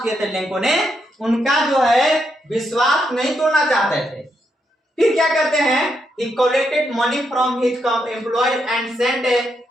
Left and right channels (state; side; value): normal; both; correlation 0.80